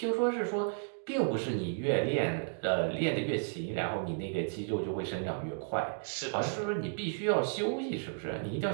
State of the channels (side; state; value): left; silent; digital silence